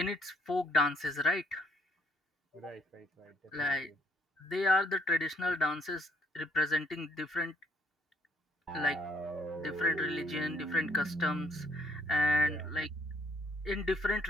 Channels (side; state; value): both; normal; correlation 0.65